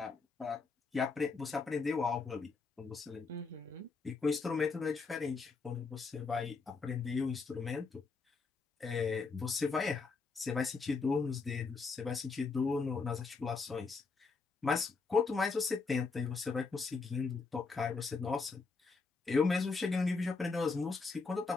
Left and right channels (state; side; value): quieter; right; 4.4 dB